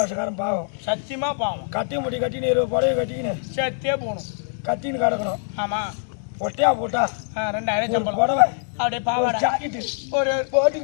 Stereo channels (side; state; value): right; silent; 57 dB below the other